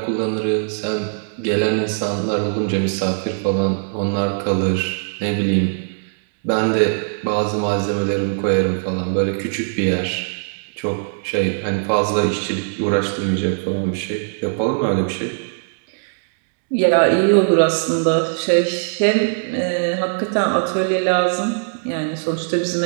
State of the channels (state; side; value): silent; left; digital silence